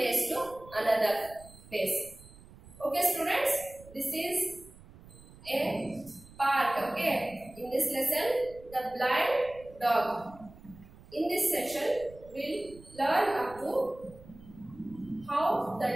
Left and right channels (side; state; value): right; noise; rumble, 21 dB below the sound